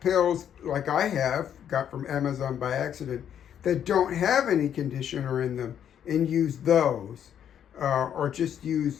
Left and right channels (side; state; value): right; quieter; 9.3 dB